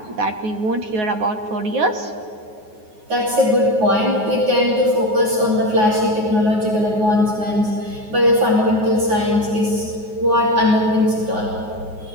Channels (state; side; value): late; left; 9.4 ms